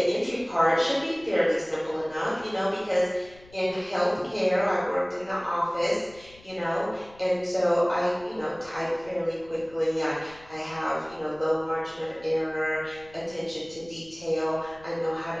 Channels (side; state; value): left; noise; rumble, 24 dB below the sound